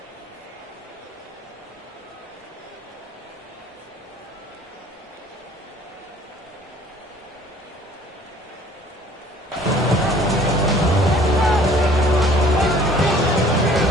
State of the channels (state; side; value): normal; both; correlation 0.54